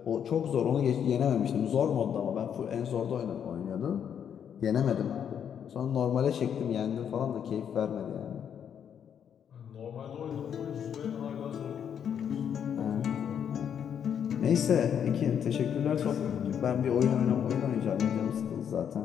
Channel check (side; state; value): right; quieter; 8.4 dB